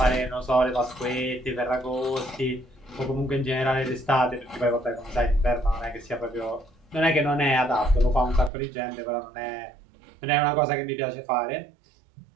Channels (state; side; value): drops out; left; at 8.5 s